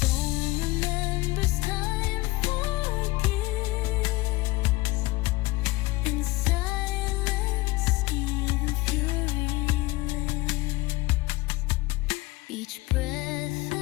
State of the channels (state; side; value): quieter; right; 20.7 dB